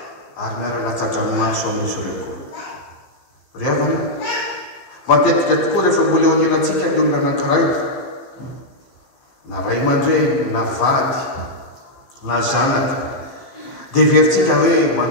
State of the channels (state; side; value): late; right; 15 ms